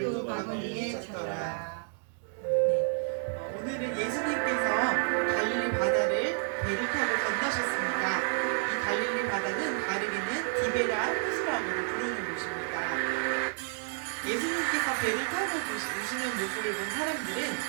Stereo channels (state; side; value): silent; left; 58 dB below the other